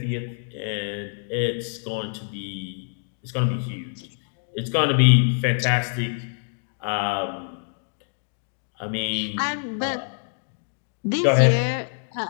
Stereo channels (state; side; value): silent; right; digital silence